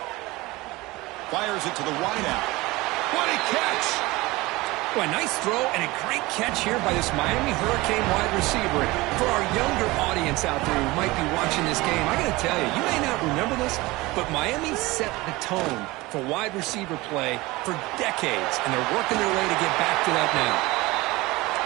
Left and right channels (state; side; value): quieter; left; 21.1 dB